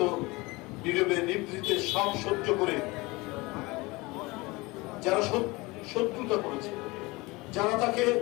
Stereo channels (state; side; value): quieter; right; 23.4 dB